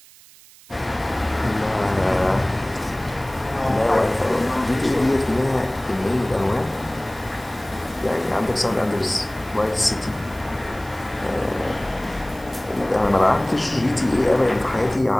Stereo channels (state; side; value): noise; right; hiss, 23 dB below the sound